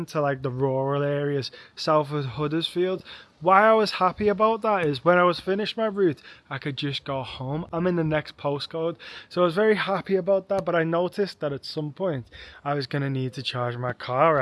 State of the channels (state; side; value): identical; both; correlation 1.00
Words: to like the rural areas south of Huddersfield. Why I was happy about that is when I was finished my route, I could just go home. I'm in the next postcode, so I was very happy about that. But I noticed that at some point I was going to need to charge my car.